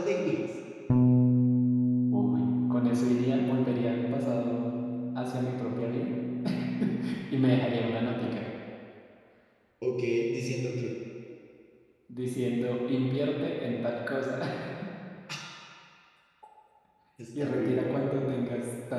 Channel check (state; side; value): identical; both; correlation 1.00